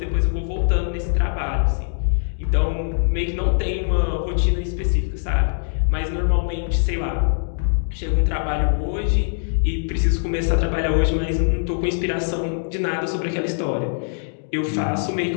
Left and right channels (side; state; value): right; silent; digital silence